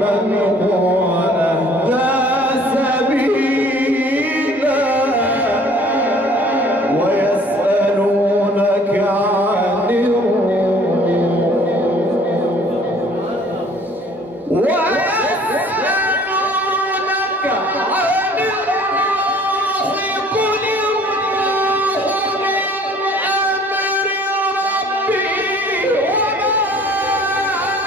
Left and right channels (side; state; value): both; normal; correlation 0.54